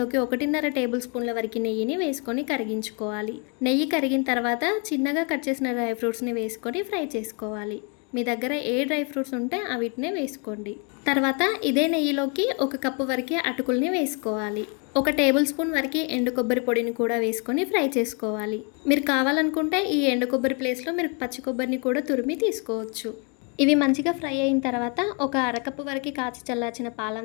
1.5 టేబుల్ స్పూన్ల వరకు నెయ్యిని వేసుకొని కరిగించుకోవాలి. నెయ్యి కరిగిన తర్వాత చిన్నగా కట్ చేసిన డ్రై ఫ్రూట్స్ని వేసుకొని ఫ్రై చేసుకోవాలి. మీ దగ్గర ఏ డ్రై ఫ్రూట్స్ ఉంటే అవిటినే వేసుకోండి. తర్వాత ఇదే నెయ్యిలోకి 1 కప్పు వరకు అటుకుల్ని వేసుకోవాలి. 1 టేబుల్ స్పూన్ వరకు ఎండు కొబ్బరి పొడిని కూడా వేసుకొని ఫ్రై చేసుకోవాలి. మీరు కావాలనుకుంటే ఈ ఎండు కొబ్బరి ప్లేస్లో మీరు పచ్చి కొబ్బరిని కూడా తురిమి తీసుకోవచ్చు. ఇవి మంచిగా ఫ్రై అయిన తర్వాత 1 అరకప్పు వరకు కాచి చల్లార్చిన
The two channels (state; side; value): quieter; right; 35.3 dB